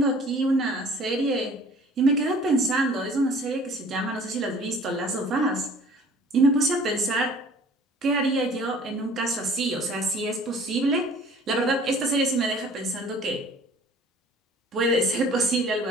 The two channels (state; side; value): normal; both; correlation 0.50